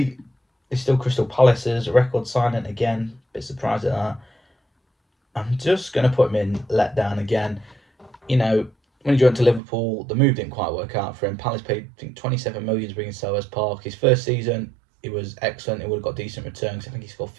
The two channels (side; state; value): left; drops out; at 9.6 s